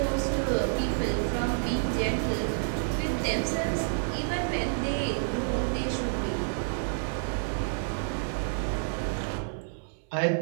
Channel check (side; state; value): left; silent; 59 dB below the other